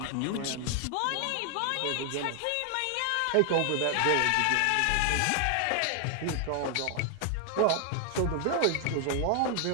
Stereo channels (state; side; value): different; both; correlation 0.00